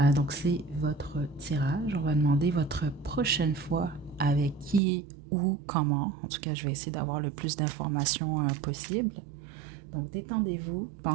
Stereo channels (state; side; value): drops out; left; at 4.8 s